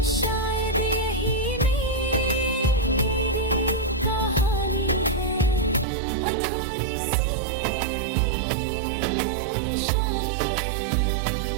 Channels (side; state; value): left; drops out; at 5.9 s